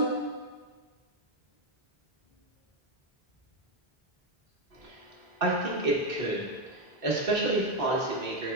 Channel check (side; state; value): both; normal; correlation 0.06